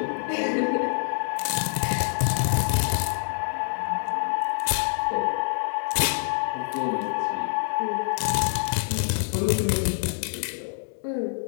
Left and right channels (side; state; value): right; silent; digital silence